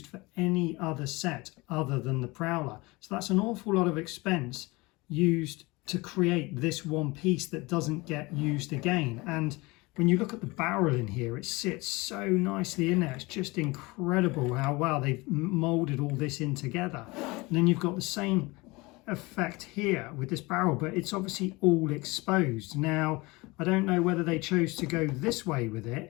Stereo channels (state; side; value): quieter; right; 23.6 dB